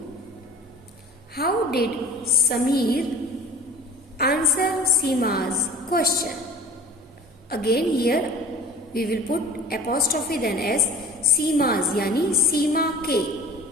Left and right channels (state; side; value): normal; both; correlation 0.43